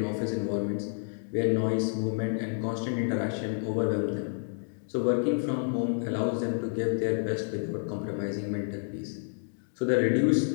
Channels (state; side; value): silent; right; digital silence